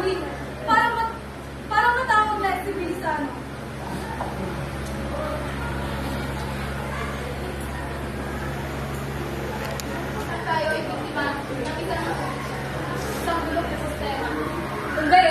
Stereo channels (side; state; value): both; identical; correlation 1.00